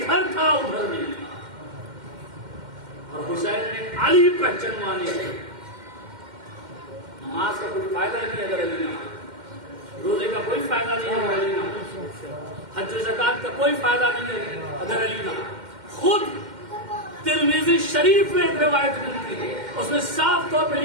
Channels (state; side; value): late; left; 2.1 ms